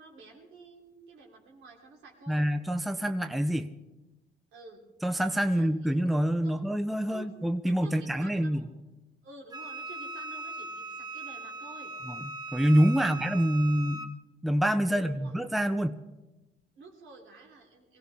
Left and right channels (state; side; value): normal; both; correlation 0.94